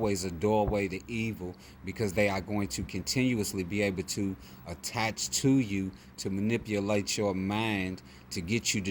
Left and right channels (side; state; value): both; identical; correlation 1.00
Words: a doorway to evil, because they are going to continuously be able to attach to you to manipulate your mind to get you